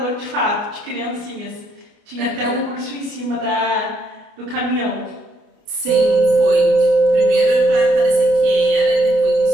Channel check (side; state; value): left; late; 29 ms